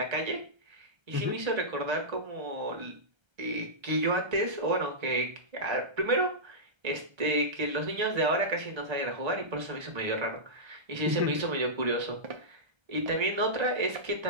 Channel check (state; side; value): late; left; 1.3 ms